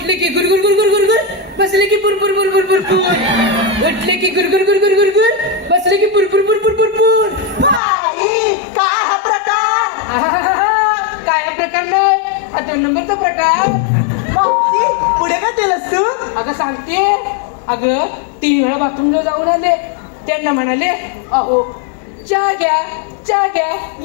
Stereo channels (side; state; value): right; drops out; at 7.8 s